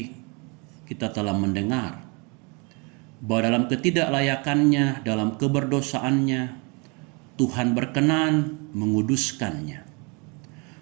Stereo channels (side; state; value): left; quieter; 31.6 dB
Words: kita telah mendengar bahwa dalam ketidaklayakannya, dalam keberdosaannya, Tuhan berkenan menguduskannya.